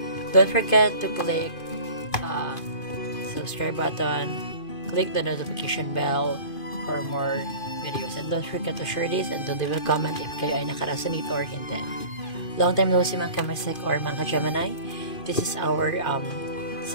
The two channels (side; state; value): right; late; 2.5 ms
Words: Don't forget to click subscribe button, click the notification bell for more videos, and don't forget to share this and to leave a comment if kayo ay nakaresonate or hindi. Long time no see mga ka-mystic or mga ka-Gemini. This is our